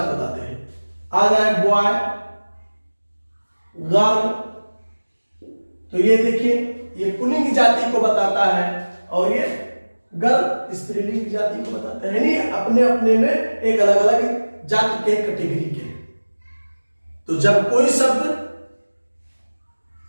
बताते हैं। आ जाए बॉय, गर्ल, तो ये देखिए ये पुल्लिंग जाति को बताता है, और ये गर्ल स्त्रीलिंग जाति को बताता है, यानी अपने अपने में एक अलग अलग जाति के कैटेगरी के। तो जब कोई शब्द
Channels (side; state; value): both; inverted; correlation -1.00